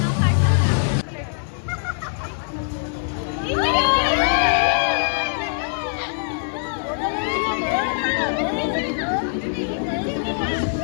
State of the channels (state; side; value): silent; right; 64 dB below the other